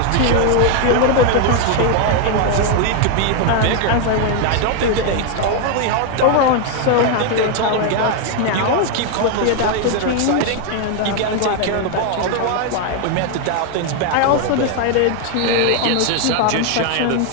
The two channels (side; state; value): both; different; correlation 0.01